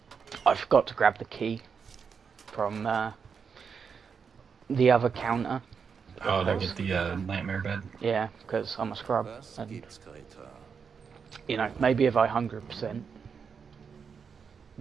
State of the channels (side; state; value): left; quieter; 6.2 dB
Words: I forgot to grab the key from the other counter. Oh, to get the nightmare bed? Yeah, because I'm a scrub, and, you know, maybe if I 100%,